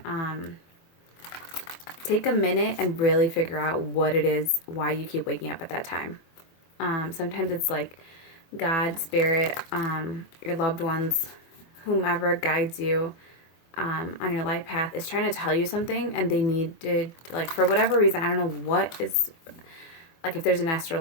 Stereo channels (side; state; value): right; late; 24 ms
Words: take a minute and really figure out what it is, why you keep waking up at that time. Sometimes it's like God, spirit, your loved ones, whomever guides you on your life path is trying to tell you something, and they need to, like, for whatever reason, I don't know what is, like, if there's an